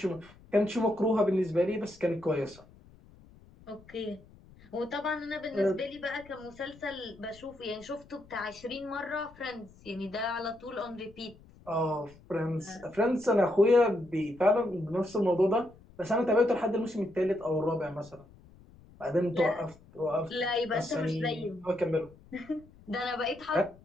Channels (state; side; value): noise; left; rumble, 24 dB below the sound